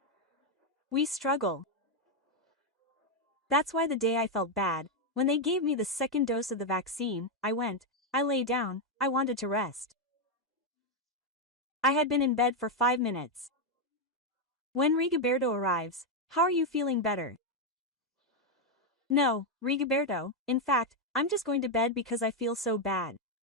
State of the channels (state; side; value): normal; both; correlation 0.03